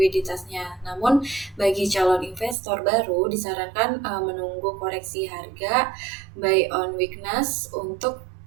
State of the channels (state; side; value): drops out; left; at 2.6 s